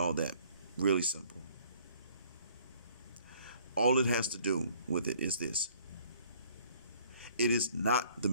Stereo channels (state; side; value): inverted; both; correlation -0.58